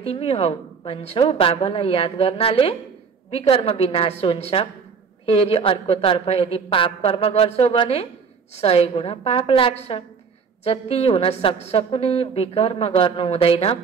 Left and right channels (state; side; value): quieter; left; 5.7 dB